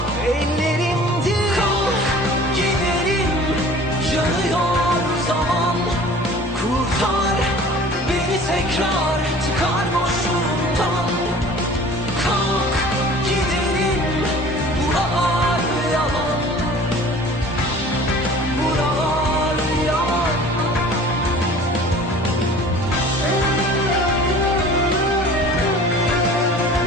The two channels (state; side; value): normal; both; correlation 0.45